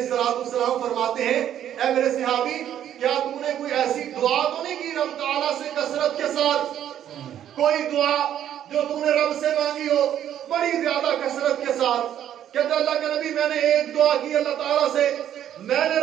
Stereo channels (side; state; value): left; quieter; 10.6 dB